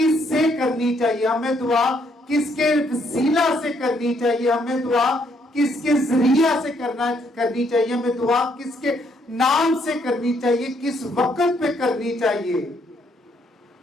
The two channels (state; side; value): normal; both; correlation 0.71